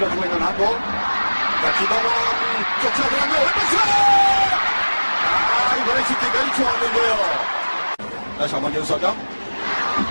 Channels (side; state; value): both; inverted; correlation -1.00